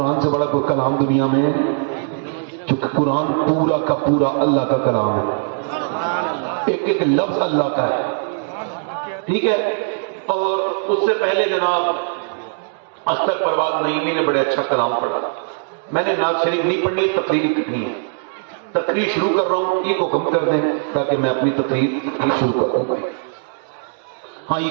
سے بڑا کوئی کلام دنیا میں ہے؟ کیونکہ قرآن پورا کا پورا اللہ کا کلام ہے، ایک ایک لفظ اللہ کا ہے، ٹھیک ہے۔ اور اس سے پہلے جناب اختر پروان نعیمی نے بڑے اچھا کلام پڑھا۔ میں نے نعت شریف نہیں پڑھنی، تقریر کرنی ہے، تقریر شروع کر رہا ہوں، ای کو کم کر دیں تاکہ میں اپنی تقریر شروع کر دوں۔ ہاں ای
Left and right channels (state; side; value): silent; left; 61 dB below the other